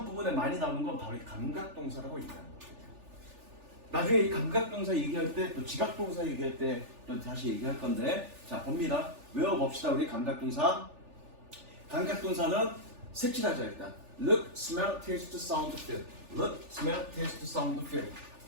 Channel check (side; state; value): left; late; 3.4 ms